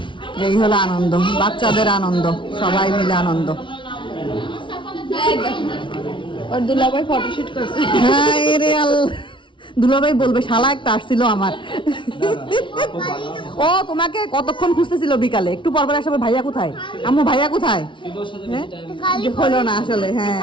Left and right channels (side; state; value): right; late; 0.24 ms